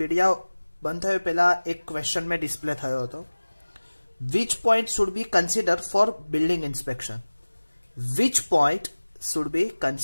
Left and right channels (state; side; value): inverted; both; correlation -1.00